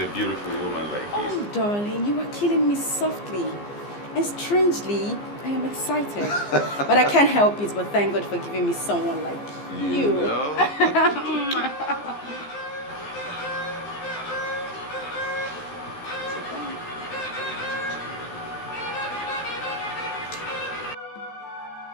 beautiful woman like you. Oh, darling, you are killing me softly. And strangely, I am excited. But I can't help it, but thank God for giving me someone like you. know?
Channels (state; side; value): late; right; 15 ms